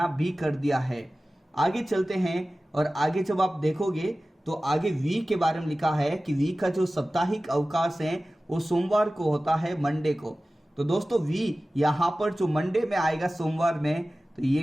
भी कर दिया है। आगे चलते हैं और आगे जब आप देखोगे तो आगे वी के बारे में लिखा है कि वी का जो साप्ताहिक अवकाश है वो सोमवार को होता है, मंडे को। तो दोस्तों, वी यहाँ पर जो मंडे में आएगा सोमवार में, तो ये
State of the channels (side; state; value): both; normal; correlation 0.96